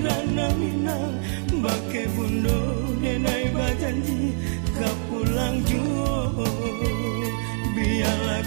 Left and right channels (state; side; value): silent; left; 62 dB below the other